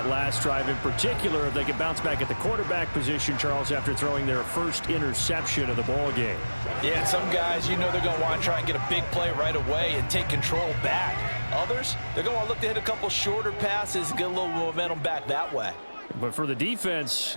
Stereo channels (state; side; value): inverted; both; correlation -1.00